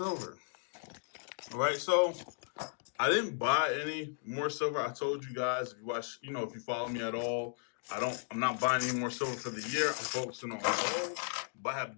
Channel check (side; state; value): right; silent; digital silence